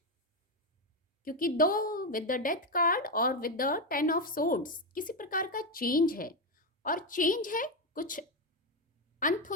क्योंकि 2 विद द डेथ कार्ड और विद द 10 ऑफ सोर्ड्स किसी प्रकार का चेंज है। और चेंज है, कुछ अंत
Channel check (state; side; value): normal; both; correlation 0.09